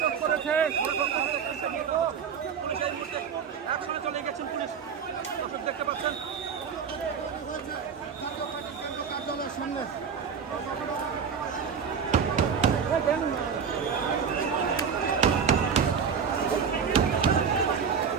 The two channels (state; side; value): quieter; left; 6.7 dB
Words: করেছে। চলে গেছেন পুলিশ, দেখতে পাচ্ছেন কার্যালয়ের সামনে।